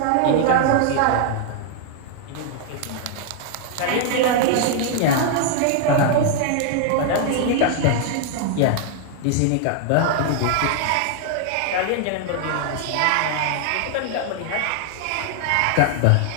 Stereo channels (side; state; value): both; different; correlation 0.00